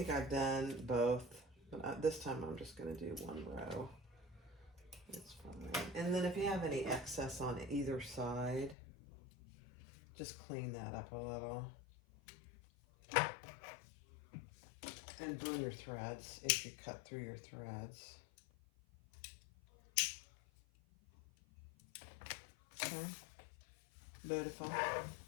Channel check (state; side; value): drops out; right; at 8.8 s